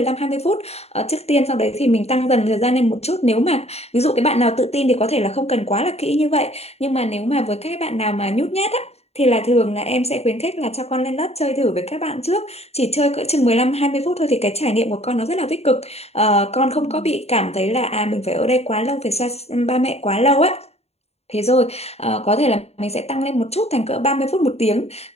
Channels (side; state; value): right; late; 0.30 ms